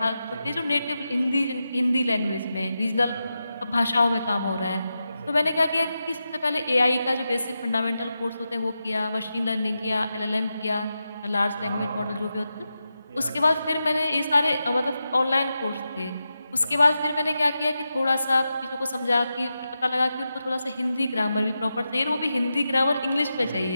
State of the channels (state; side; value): inverted; both; correlation -0.90